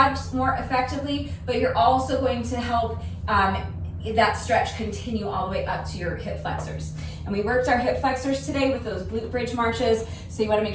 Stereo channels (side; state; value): both; identical; correlation 1.00